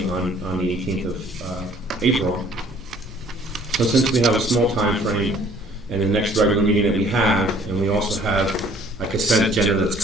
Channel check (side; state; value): both; normal; correlation 0.56